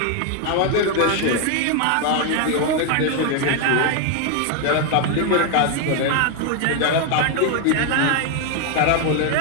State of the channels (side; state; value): both; different; correlation 0.01